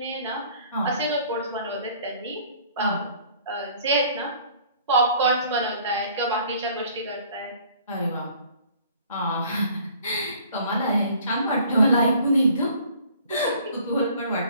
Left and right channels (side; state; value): both; inverted; correlation -0.54